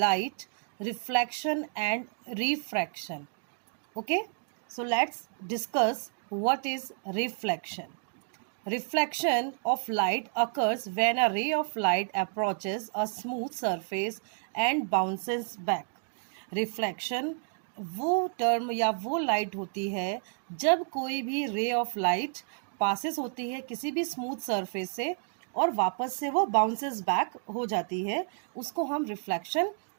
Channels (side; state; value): left; silent; digital silence